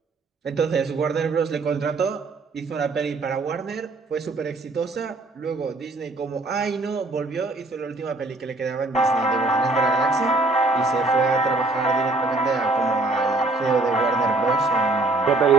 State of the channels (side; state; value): left; quieter; 3.1 dB